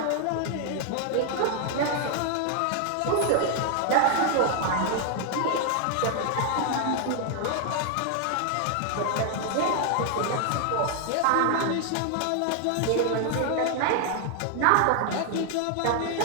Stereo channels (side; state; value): both; different; correlation 0.00